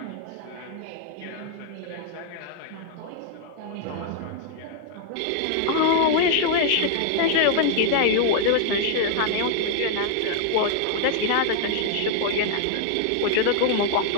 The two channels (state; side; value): different; both; correlation 0.00